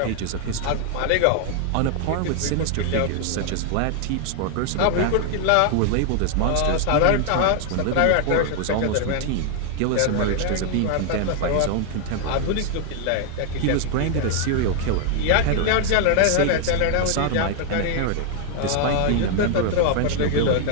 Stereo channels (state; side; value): different; both; correlation 0.00